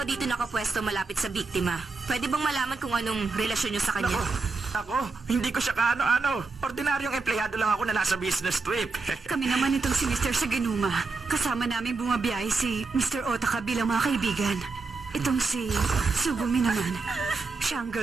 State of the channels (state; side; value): quieter; left; 4.1 dB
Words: dito nakapwesto malapit sa biktima. Pwede bang malaman kung anong relasyon nyo sa kanya? Ako, hindi ko siya kaano-ano. Ordinaryong empleyado lang ako na nasa business trip. Kami naman itong si Mr. Saganuma. Kasama namin bumabiyahe si Mr. Otaka bilang mga kaibigan. Itong si Sugumi naman. Siya ang